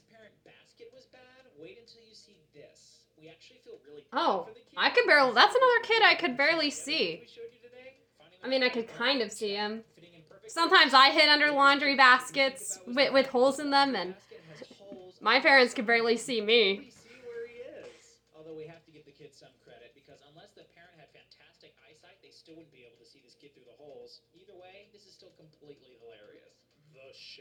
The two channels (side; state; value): both; identical; correlation 1.00